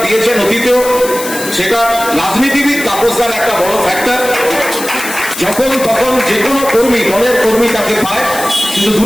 দিয়েছেন অতীতেও, সেটা রাজনীতিবিদ তাপসদার একটা বড় ফ্যাক্টর। যখন তখন যে কোনো কর্মী, দলের কর্মী তাকে পায়, কিন্তু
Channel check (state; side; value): noise; left; hiss, 9 dB below the sound